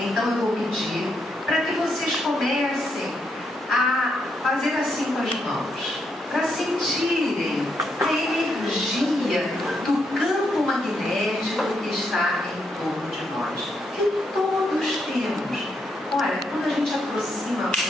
eu vou pedir para que vocês comecem a fazer assim com as mãos, para sentirem a energia do campo magnético que está em torno de nós, que todos temos. Olha, quando a gente aproxima a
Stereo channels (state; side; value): normal; both; correlation 0.79